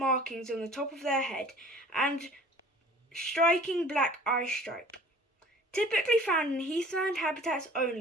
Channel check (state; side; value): normal; both; correlation 0.48